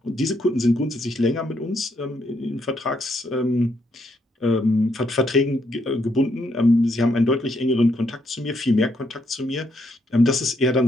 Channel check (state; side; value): normal; both; correlation 0.75